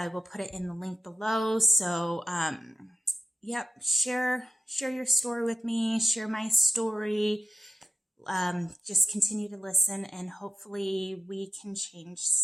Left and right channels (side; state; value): both; normal; correlation 0.93